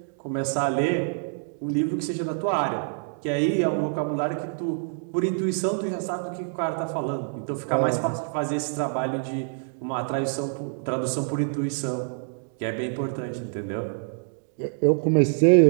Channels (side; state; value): left; silent; digital silence